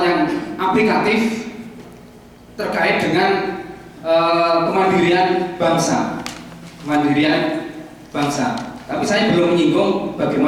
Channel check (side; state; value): both; identical; correlation 1.00